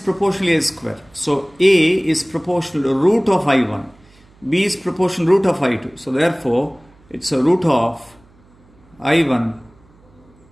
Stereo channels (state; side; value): noise; right; hum, 30 dB below the sound